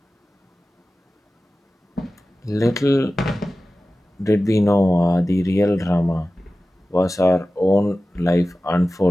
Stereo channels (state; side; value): normal; both; correlation 0.95